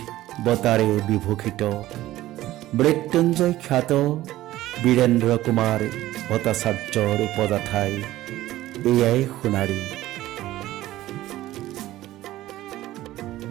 বঁটাৰে বিভূষিত মৃত্যুঞ্জয় খ্যাত বীৰেন্দ্ৰ কুমাৰ ভট্টাচাৰ্যৰ উপজাঠাই এয়াই সোণাৰী।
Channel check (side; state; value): left; quieter; 15.5 dB